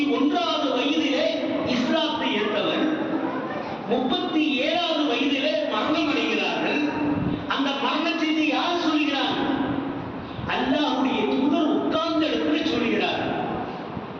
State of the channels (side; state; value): both; identical; correlation 1.00